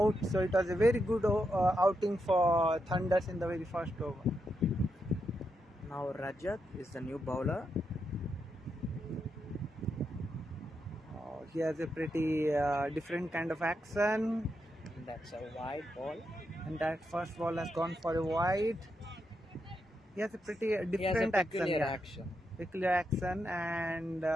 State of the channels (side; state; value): both; normal; correlation 0.84